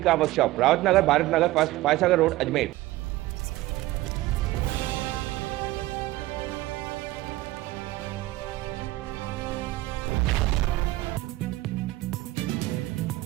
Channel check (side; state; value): left; quieter; 17.4 dB